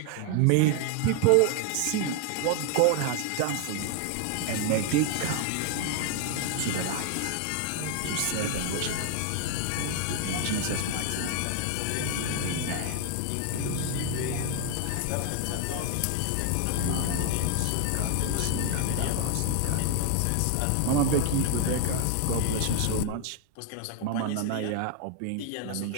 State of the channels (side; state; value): both; different; correlation 0.00